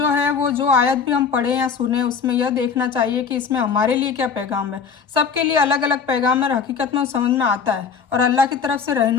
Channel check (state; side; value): quieter; right; 6.2 dB